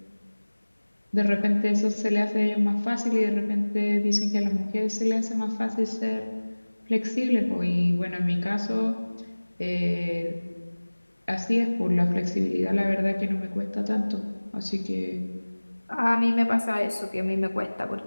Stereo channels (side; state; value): both; inverted; correlation -1.00